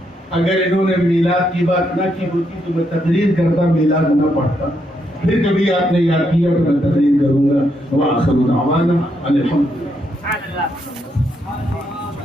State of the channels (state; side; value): normal; both; correlation 0.78